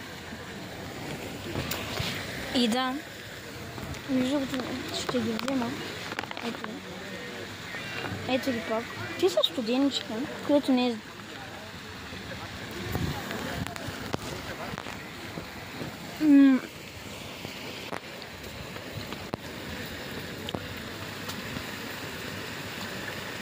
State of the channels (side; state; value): both; identical; correlation 1.00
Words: И да, между другото ще ги взема. Ето ги пак. Те са студеничка, което не е...